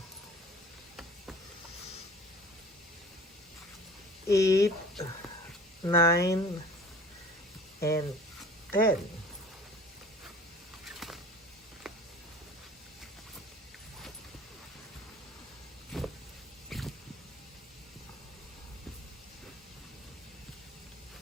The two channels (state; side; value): normal; both; correlation 0.45